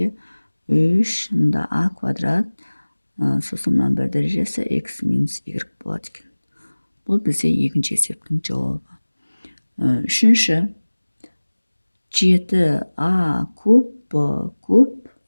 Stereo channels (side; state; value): both; inverted; correlation -1.00